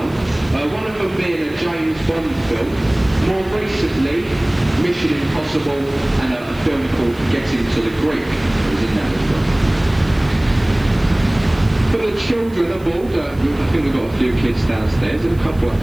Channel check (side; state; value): right; noise; hiss, 26 dB below the sound